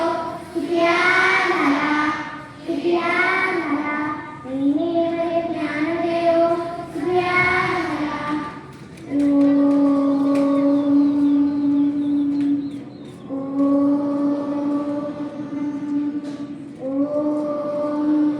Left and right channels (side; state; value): both; identical; correlation 1.00